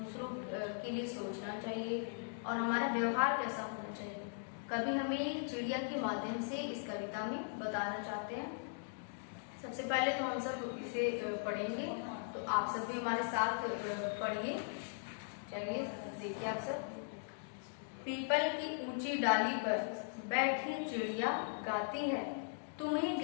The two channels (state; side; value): silent; right; digital silence